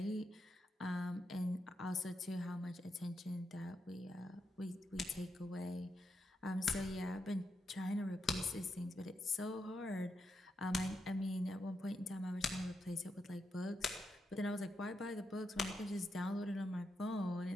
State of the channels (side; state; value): both; normal; correlation 0.83